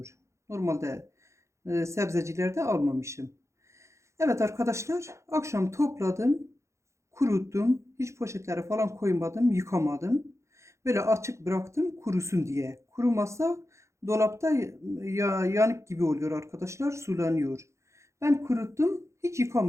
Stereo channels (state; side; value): late; left; 0.14 ms